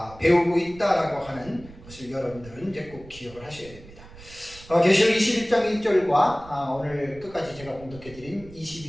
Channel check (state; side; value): noise; right; rumble, 19 dB below the sound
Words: 배우고 있다라고 하는 것을 여러분들은 이제 꼭 기억을 하셔야 됩니다. 계시록 21장 1절과 오늘 끝까지 제가 봉독해드린